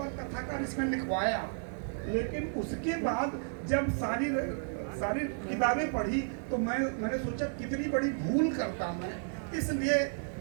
कथाकार इसमें लिखवाया, लेकिन उसके बाद जब सारी किताबें पढ़ी तो मैंने सोचा कितनी बड़ी भूल करता मैं, इसलिए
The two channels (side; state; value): left; silent; 56 dB below the other